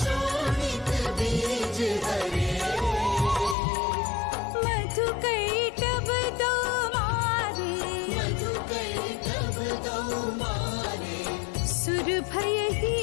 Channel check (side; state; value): right; drops out; at 3.6 s